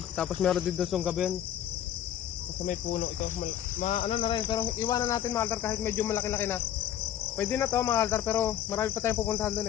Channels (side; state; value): right; quieter; 10.9 dB